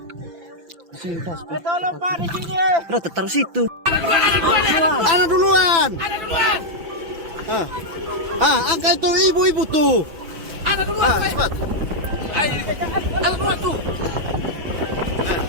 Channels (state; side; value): late; left; 5.9 ms